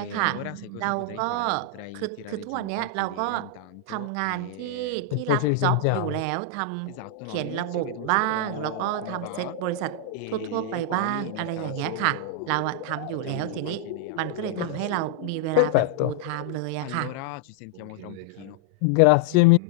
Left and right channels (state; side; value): different; both; correlation -0.01